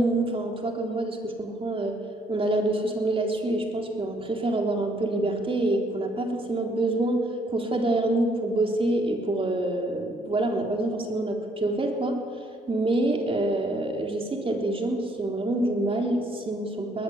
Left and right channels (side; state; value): both; normal; correlation 0.67